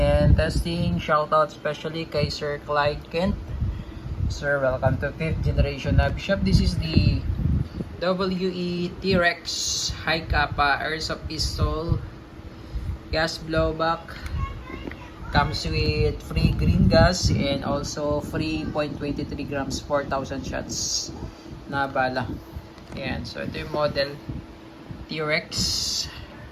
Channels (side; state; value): both; identical; correlation 1.00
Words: testing. Shoutout especially kay Sir Clyde Kent. Sir, welcome to 5th generation Nabi Shop. This is the WE T-Rex High Kappa Airsoft Pistol gas blowback. Comes with free green gas and also free 0.23 grams 4,000 shots na bala. Ayan, so ito yung model T-Rex